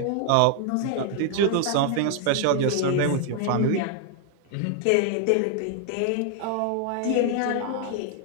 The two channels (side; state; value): both; different; correlation 0.00